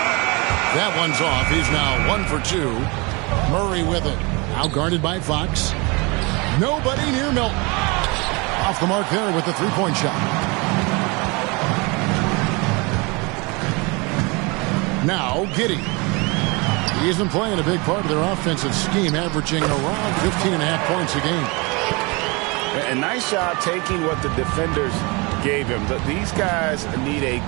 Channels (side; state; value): left; quieter; 27.8 dB